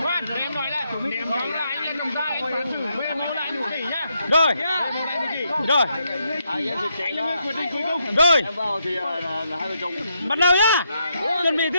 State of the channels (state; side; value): inverted; both; correlation -0.79